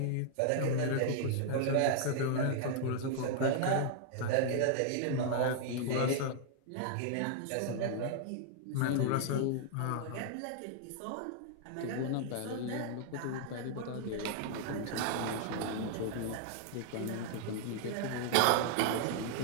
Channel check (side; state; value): both; different; correlation -0.01